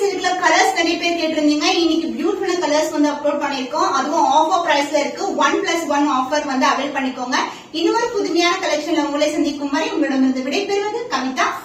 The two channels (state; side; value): identical; both; correlation 1.00